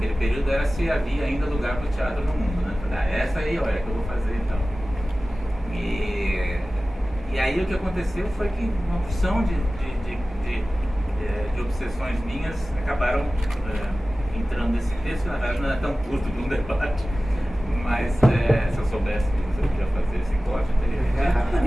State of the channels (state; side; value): normal; both; correlation 0.96